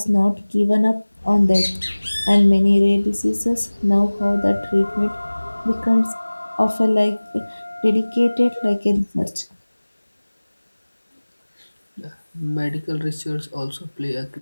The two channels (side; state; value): both; inverted; correlation -1.00